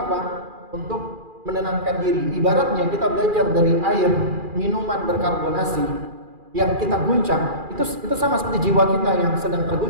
Untuk menenangkan diri. Ibaratnya kita belajar dari air minuman berkarbonasi yang kita guncang, itu sama seperti jiwa kita yang sedang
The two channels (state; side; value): late; left; 2.4 ms